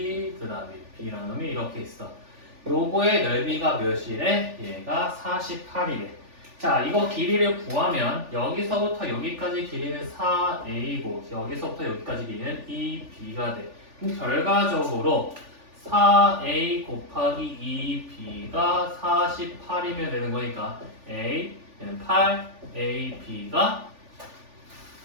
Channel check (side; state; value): left; late; 3.4 ms